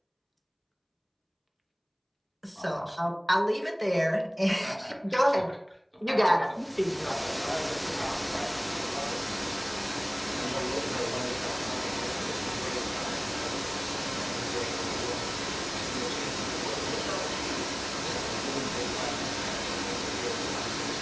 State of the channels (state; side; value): identical; both; correlation 1.00